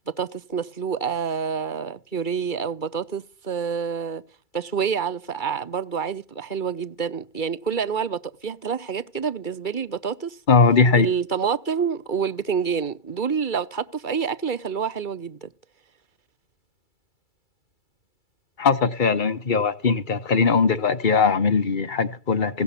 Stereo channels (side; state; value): right; late; 2.3 ms